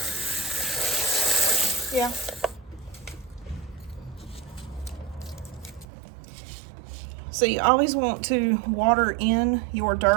Yeah. So you always want to water in your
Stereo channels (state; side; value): drops out; left; at 5.9 s